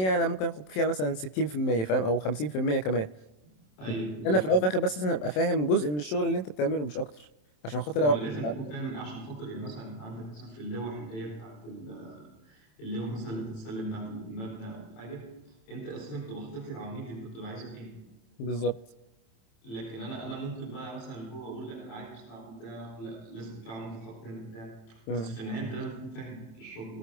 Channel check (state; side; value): late; right; 27 ms